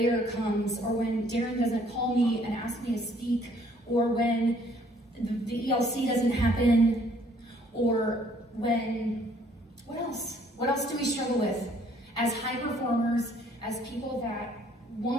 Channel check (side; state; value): both; normal; correlation 0.62